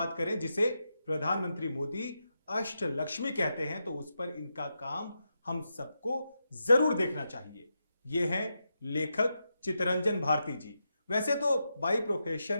करें, जिसे प्रधानमंत्री मोदी अष्टलक्ष्मी कहते हैं, तो उस पर इनका काम हम सबको जरूर देखना चाहिए। ये हैं लेखक चित्तरंजन भारती जी। वैसे तो बाई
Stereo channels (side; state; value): both; inverted; correlation -0.86